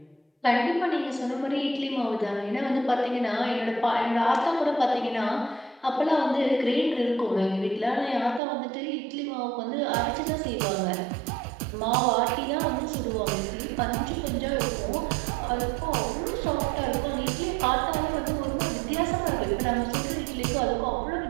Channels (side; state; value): left; drops out; at 8.4 s